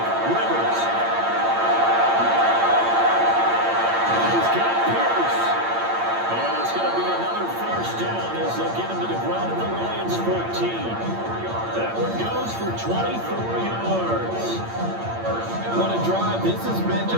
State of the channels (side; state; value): left; late; 8.8 ms